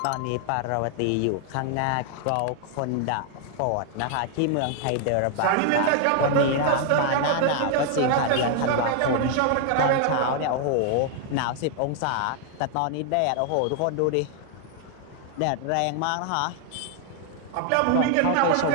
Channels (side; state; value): both; different; correlation 0.00